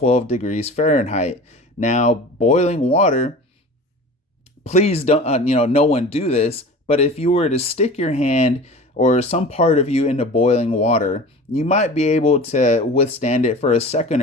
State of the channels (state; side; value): normal; both; correlation 0.37